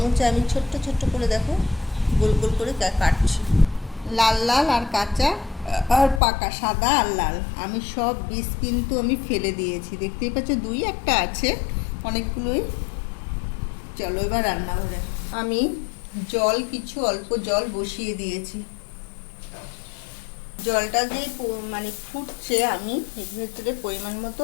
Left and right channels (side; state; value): right; drops out; at 6.2 s